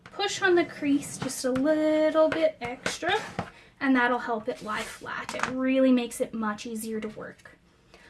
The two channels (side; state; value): both; identical; correlation 1.00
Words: push on the crease just a little bit extra, and that'll help it lie flat. It really makes it much easier to work.